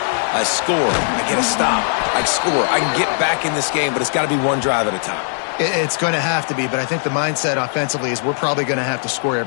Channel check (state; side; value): silent; right; digital silence